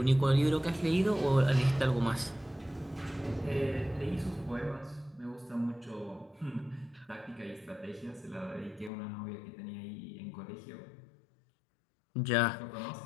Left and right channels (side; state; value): right; drops out; at 8.9 s